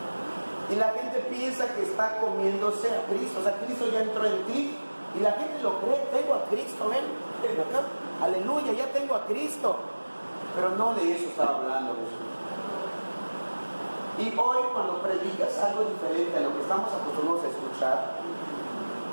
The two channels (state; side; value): inverted; both; correlation -1.00